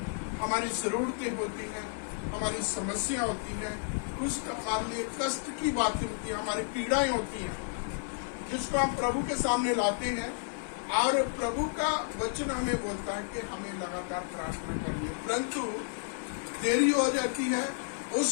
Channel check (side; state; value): right; silent; 57 dB below the other